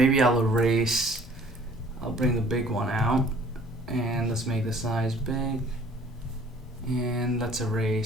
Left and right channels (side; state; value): both; normal; correlation 0.54